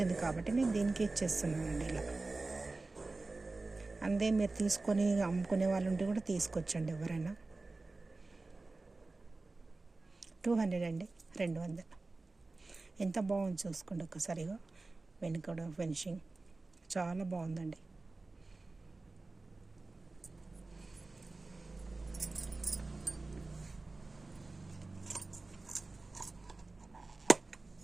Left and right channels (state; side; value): quieter; left; 3.4 dB